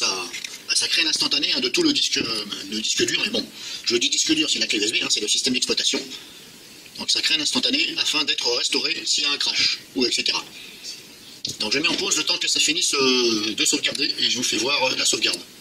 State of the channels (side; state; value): both; identical; correlation 1.00